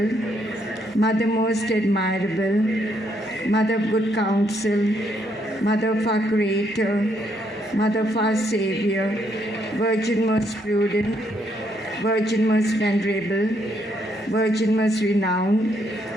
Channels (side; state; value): both; normal; correlation 0.73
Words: Mother most admirable, Mother of good counsel, Mother of our Creator, Mother of our Savior, Virgin most prudent, Virgin most venerable, Virgin most renowned,